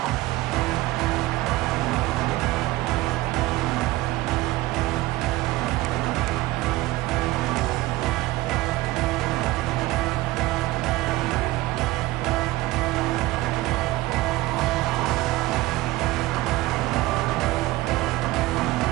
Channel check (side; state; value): left; quieter; 18.5 dB